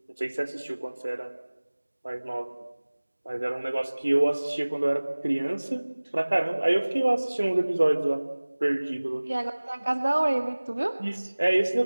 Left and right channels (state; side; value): inverted; both; correlation -1.00